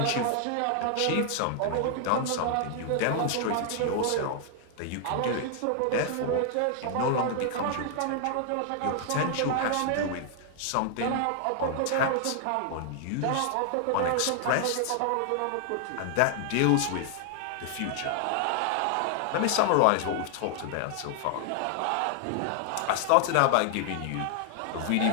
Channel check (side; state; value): both; different; correlation 0.00